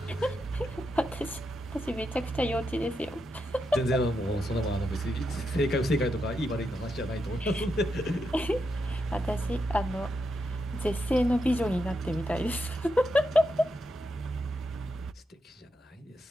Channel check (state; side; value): normal; both; correlation 0.84